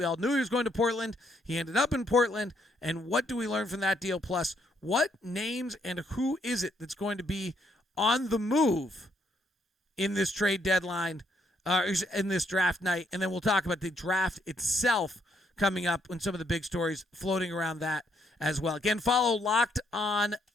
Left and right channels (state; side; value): normal; both; correlation 0.72